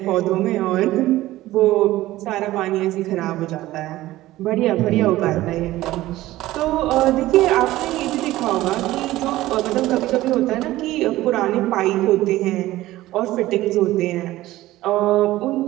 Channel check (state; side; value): quieter; left; 16.3 dB